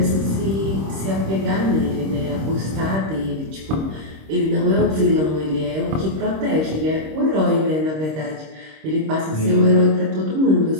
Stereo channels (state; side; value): late; left; 26 ms